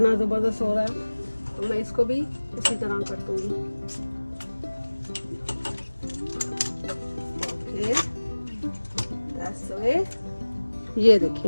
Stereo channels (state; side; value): inverted; both; correlation -1.00